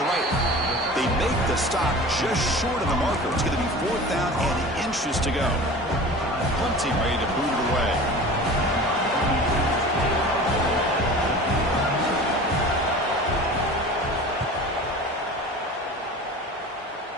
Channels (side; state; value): both; normal; correlation 0.38